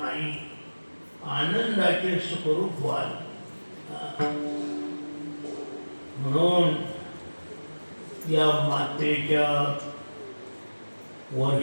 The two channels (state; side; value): inverted; both; correlation -1.00